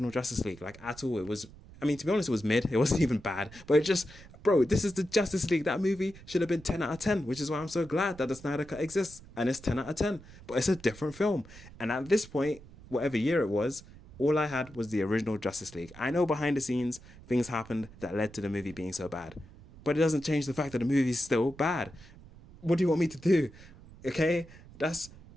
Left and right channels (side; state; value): right; noise; rumble, 20 dB below the sound